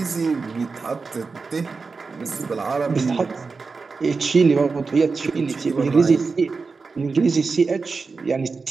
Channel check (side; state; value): left; quieter; 4.5 dB